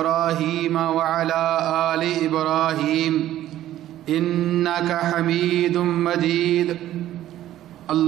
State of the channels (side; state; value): left; quieter; 13.2 dB